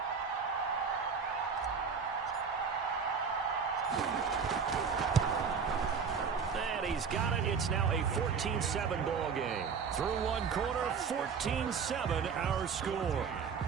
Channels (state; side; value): quieter; left; 6.0 dB